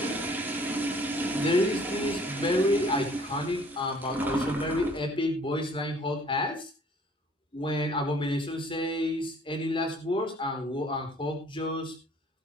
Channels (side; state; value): both; normal; correlation 0.56